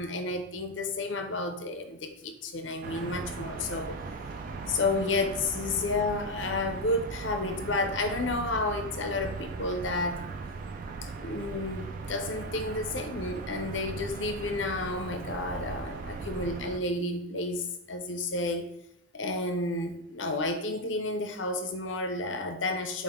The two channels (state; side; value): normal; both; correlation 0.07